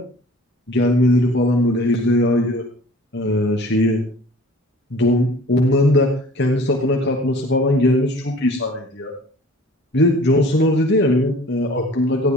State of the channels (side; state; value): both; normal; correlation 0.48